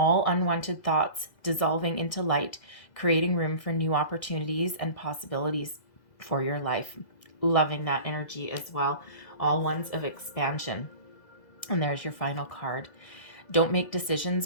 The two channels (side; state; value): right; late; 2.0 ms